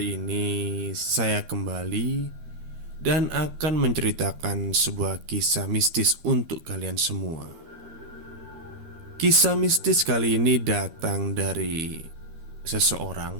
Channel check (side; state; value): left; late; 13 ms